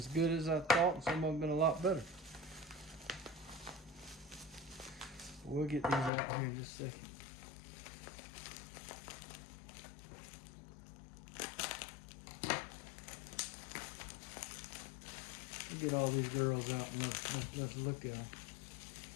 good as I thought, and some of them have been a lot better. We'll get these out here in just a second. We'll get all these girls out and let's look at them.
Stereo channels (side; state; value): right; drops out; at 6.1 s